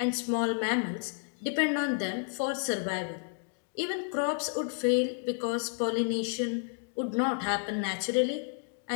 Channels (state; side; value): silent; right; 57 dB below the other